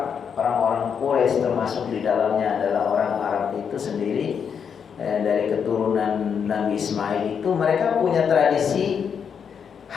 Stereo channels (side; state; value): right; quieter; 7.1 dB